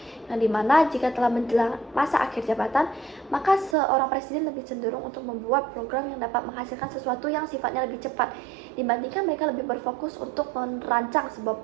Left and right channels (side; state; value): left; drops out; at 3.8 s